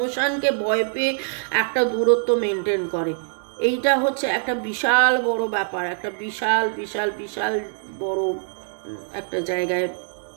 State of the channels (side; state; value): left; silent; digital silence